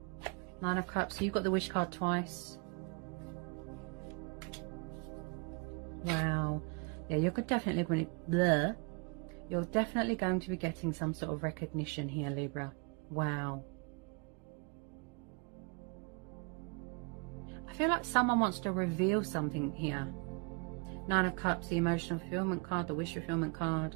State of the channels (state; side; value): quieter; left; 32.6 dB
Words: Nine of Cups. So you've got the Wish card twice. Wow. Yeah, you're definitely going to... You're definitely going to be getting some sort of recognition here, Libra. Wow. I feel like someone wants to reveal something here. Nine of Cups, the emotional fulfillment card, the wish fulfillment